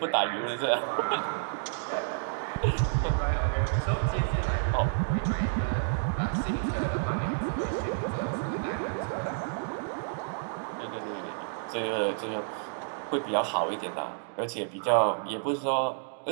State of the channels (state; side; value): silent; left; digital silence